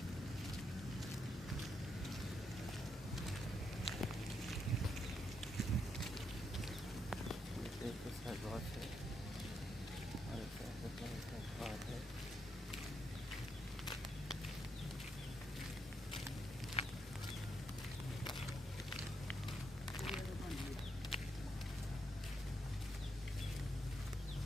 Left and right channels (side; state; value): both; normal; correlation 0.79